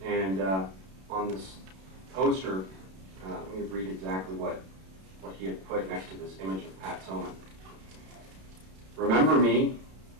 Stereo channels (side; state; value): left; late; 32 ms